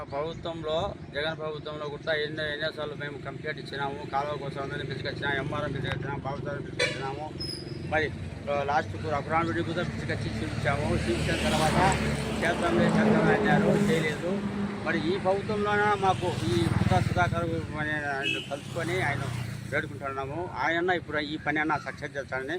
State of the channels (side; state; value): both; identical; correlation 1.00